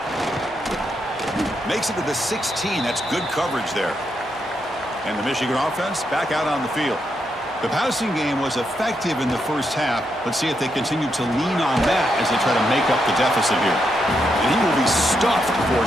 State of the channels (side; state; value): both; normal; correlation 0.81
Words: Makes it to the 16. That's good coverage there. And the Michigan offense back out on the field. The passing game was effective in the first half. Let's see if they continue to lean on that as they try to make up the deficit here. And he will be stuffed for